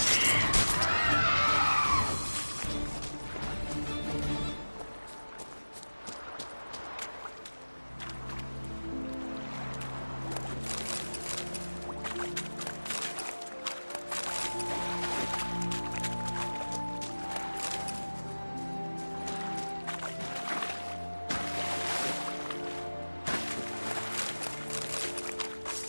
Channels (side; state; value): both; inverted; correlation -1.00